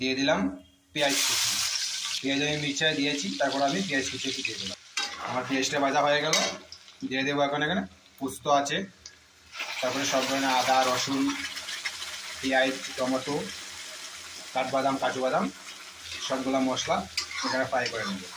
দিয়ে দিলাম পেঁয়াজ কুচি পেঁয়াজ আমি মিক্সচারে দিয়েছি তারপর আমি পেঁয়াজ কুচি দিয়ে দিলাম আমার পেঁয়াজটা ভাজা হয়ে গেল দিয়ে দেব এখন এখানে পোস্ত আছে তারপরে সব ধরনের আদা রসুন পেঁয়াজ টমেটো কাঠবাদাম কাজু বাদাম সবগুলো মশলা এখানে ফ্রাই করে নেব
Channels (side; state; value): both; identical; correlation 1.00